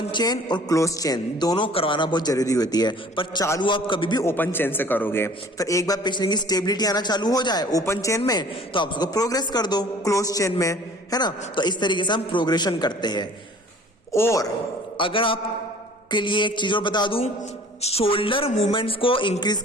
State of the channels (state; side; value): normal; both; correlation 0.50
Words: चेन और क्लोज चेन दोनों करवाना बहुत जरूरी होती है, पर चालू आप कभी भी ओपन चेन से करोगे। फिर एक बार पेशेंट की स्टेबिलिटी आना चालू हो जाए ओपन चेन में तो आप उसको प्रोग्रेस कर दो क्लोज चेन में, है ना। तो इस तरीके से हम प्रोग्रेशन करते हैं। और अगर आप के लिए एक चीज और बता दूं, शोल्डर मूवमेंट्स को इंक्रीज